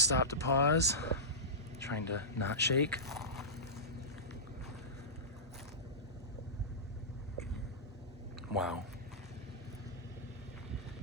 stopped to pause, trying to not shake. Wow.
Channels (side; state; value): both; normal; correlation -0.17